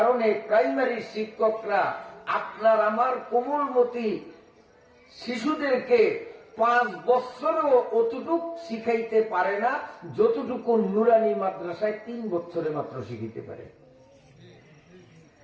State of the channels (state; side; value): identical; both; correlation 1.00